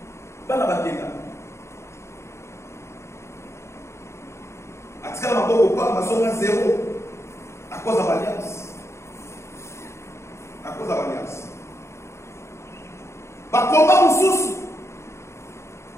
bakenda. Atikala maboko kwa mazonga zéro à cause de l'alliance. À cause de l'alliance. Bakomba mususu.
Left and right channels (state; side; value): late; right; 0.13 ms